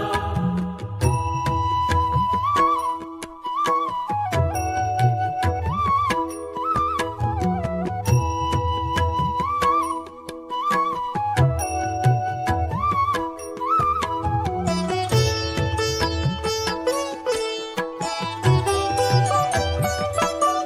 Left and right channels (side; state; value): both; identical; correlation 1.00